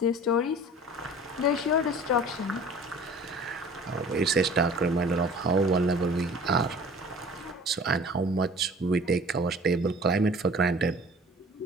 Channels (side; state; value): both; normal; correlation 0.46